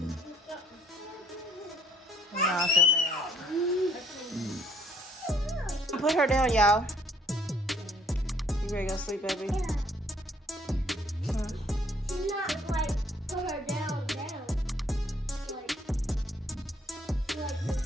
No, I feel bad. Put her down, y'all. You ready to go sleep, baby? She's not like put her down. Like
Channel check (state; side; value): normal; both; correlation 0.62